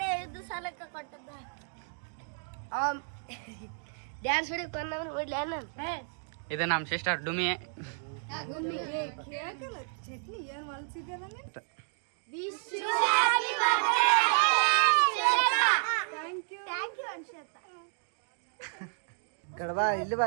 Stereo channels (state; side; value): silent; left; 56 dB below the other